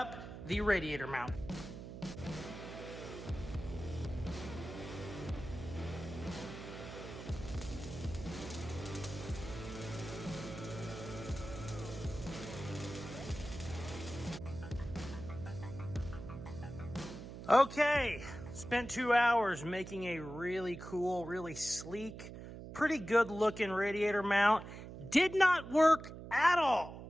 the radiator mount. Okay, spent 2 hours making a really cool, really sleek, pretty good looking radiator mount. Did not work at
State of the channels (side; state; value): right; noise; hum, 11 dB below the sound